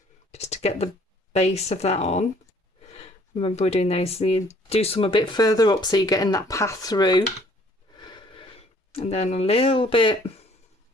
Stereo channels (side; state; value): both; normal; correlation 0.59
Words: just to get the base of that on. Remember, we're doing those, so you do some a bit further up so you're getting that path through. And then a little bit